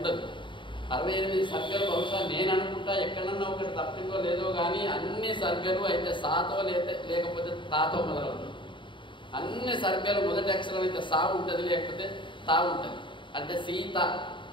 68 సర్గలు బహుశా నేను అనుకుంటా ఎక్కడన్నా ఒకటి తప్పిందో లేదో కానీ అన్ని సర్గలు అయితే సాతో లేకపోతే తాతో మొదలవుతుంది. అన్ని సర్గలు మొదటి అక్షరం అయితే సా ఉంటుంది, లేకపోతే తా ఉంటుంది. అంటే సీత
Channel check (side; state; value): right; late; 0.24 ms